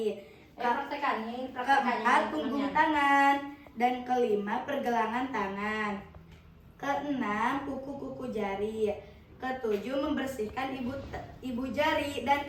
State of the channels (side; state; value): both; identical; correlation 1.00